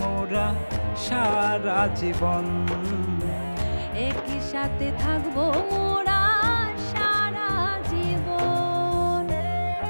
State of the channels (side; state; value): both; inverted; correlation -1.00